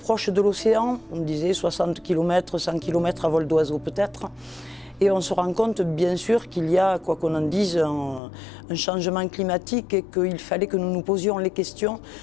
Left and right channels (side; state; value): right; drops out; at 8.2 s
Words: de l'océan, on disait 60 km, 100 km à vol d'oiseau peut-être. Et on se rend compte bien sûr qu'il y a, quoi qu'on en dise, un changement climatique et qu'il fallait que nous nous posions les questions